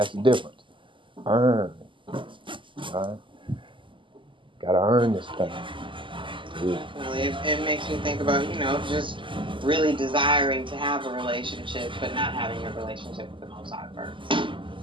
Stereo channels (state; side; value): late; left; 0.25 ms